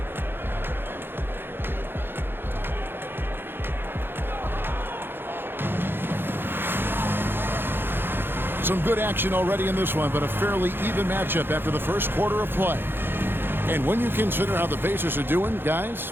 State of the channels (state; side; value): late; left; 0.10 ms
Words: Some good action already in this one, but a fairly even matchup after the first quarter of play. And when you consider how the Pacers are doing, guys,